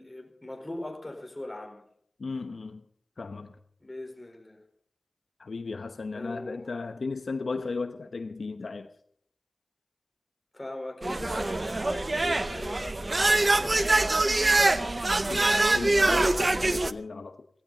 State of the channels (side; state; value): both; normal; correlation 0.98